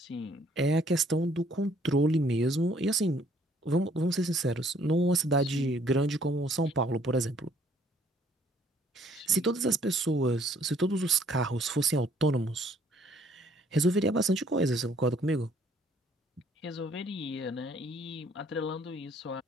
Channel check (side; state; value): both; normal; correlation 0.62